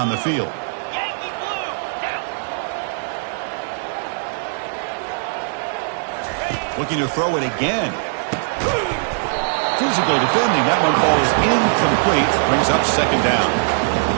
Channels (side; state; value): left; silent; digital silence